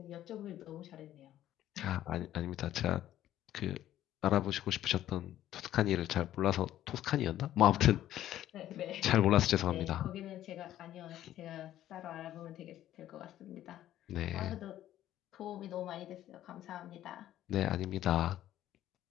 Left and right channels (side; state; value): right; quieter; 12.7 dB